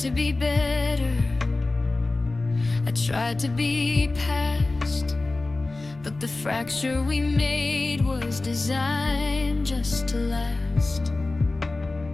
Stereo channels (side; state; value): right; quieter; 3.2 dB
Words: be better, I tried to be past, but the fracture we made was designed just to last.